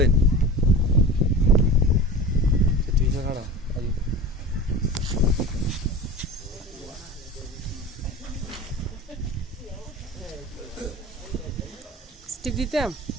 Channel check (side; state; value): both; normal; correlation 0.34